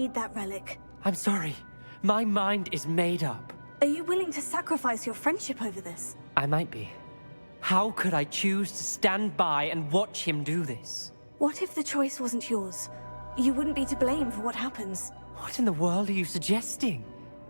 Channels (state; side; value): inverted; both; correlation -1.00